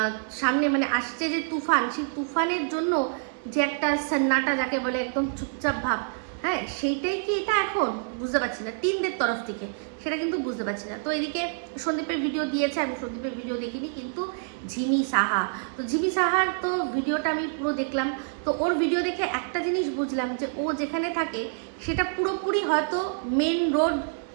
সামনে মানে আসছে যে তুফান, সেই তুফানের জন্য যে একটা সন্নাটা যাকে বলে একদম চুপচাপ ভাব, হ্যাঁ, সেইটাই কি এটা? এখন বুঝতে পারছি না টিমদের তরফ থেকে, সেটা কিন্তু বুঝতে পারছি না। তো এদিকে সন্দীপের ভিডিও দিয়েছে, আমি সন্দীপের ভিডিও দেখিনি, কিন্তু ঝিমি সাহা, তো ঝিমি সাহার তো ভিডিওটা আমি পুরো দেখলাম। তো ওর ভিডিও দেখে একটা জিনিস বুঝলাম যে ও যেখানে থাকে সেটা পুরোপুরি হয়তো মেন রোড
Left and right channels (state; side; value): silent; left; 60 dB below the other